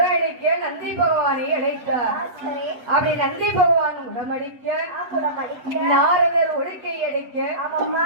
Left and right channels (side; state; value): left; late; 8.1 ms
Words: நந்தி பகவானை அழைத்தார். அப்படி நந்தி பகவான் உடமடிக்க நாரதர் ஒழுக்கை அடிக்க